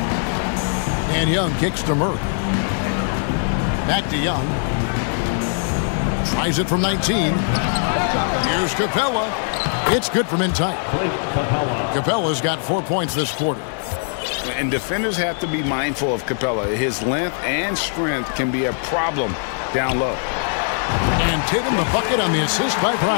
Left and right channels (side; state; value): right; silent; digital silence